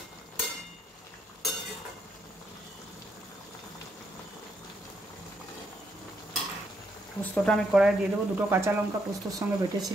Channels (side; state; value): both; normal; correlation 0.76